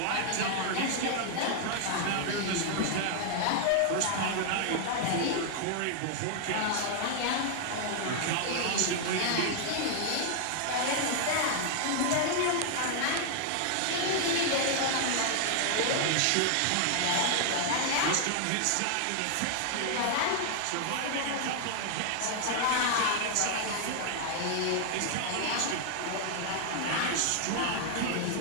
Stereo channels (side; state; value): both; different; correlation 0.00